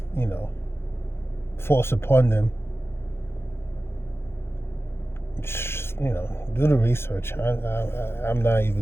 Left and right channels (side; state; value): right; late; 0.12 ms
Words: forced upon them. Do the research. I'm not even